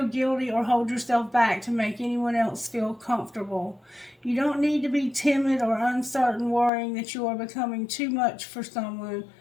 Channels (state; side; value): drops out; right; at 6.7 s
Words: guilty or hold yourself back to make anyone else feel comfortable. You don't need to be timid or uncertain, worrying that you are becoming too much for someone